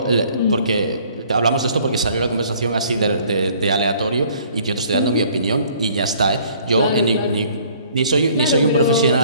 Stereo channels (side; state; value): both; inverted; correlation -0.57